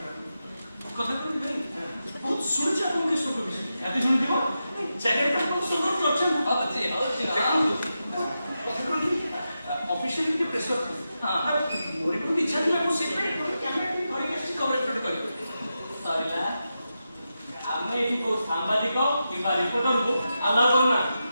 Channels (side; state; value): both; inverted; correlation -0.89